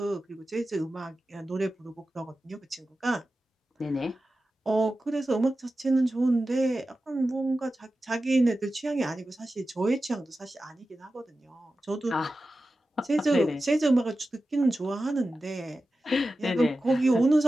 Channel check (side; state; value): both; normal; correlation 0.93